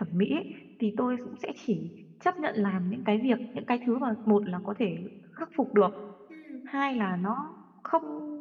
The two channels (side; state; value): both; identical; correlation 1.00